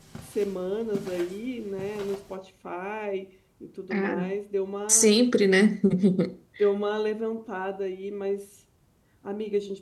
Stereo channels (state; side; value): identical; both; correlation 1.00